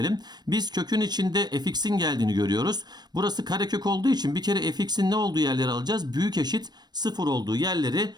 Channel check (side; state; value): left; late; 0.20 ms